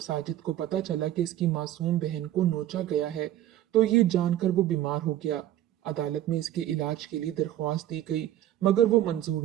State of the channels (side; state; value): left; quieter; 12.7 dB